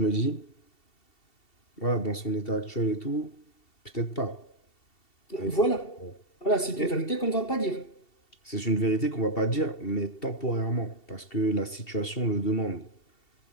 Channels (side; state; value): right; late; 2.7 ms